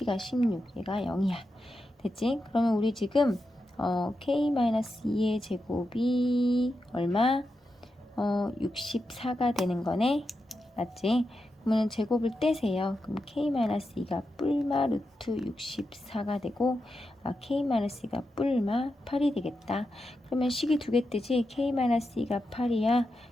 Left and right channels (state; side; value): normal; both; correlation 0.88